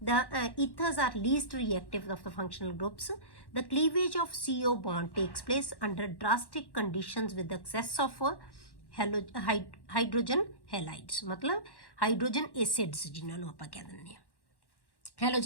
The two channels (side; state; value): right; late; 1.1 ms